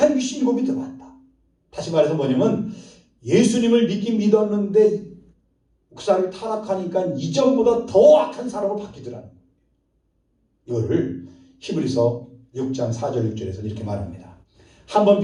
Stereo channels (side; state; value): both; identical; correlation 1.00